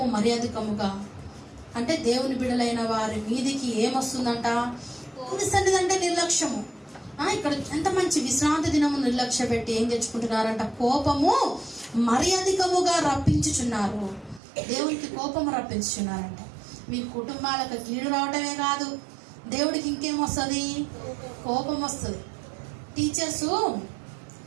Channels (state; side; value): drops out; left; at 14.4 s